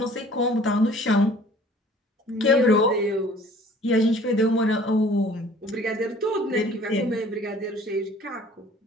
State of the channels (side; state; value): both; normal; correlation 0.52